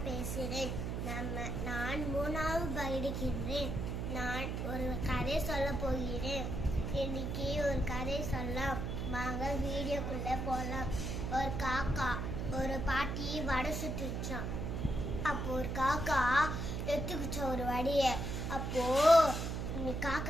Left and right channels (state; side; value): noise; right; hum, 2 dB below the sound